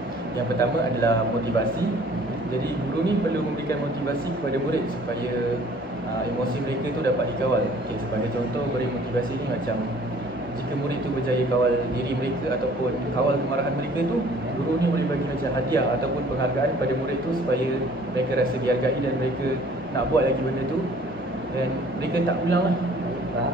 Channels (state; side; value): normal; both; correlation 0.54